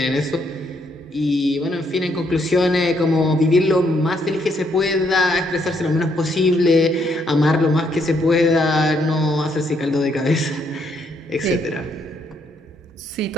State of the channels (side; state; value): both; normal; correlation 0.73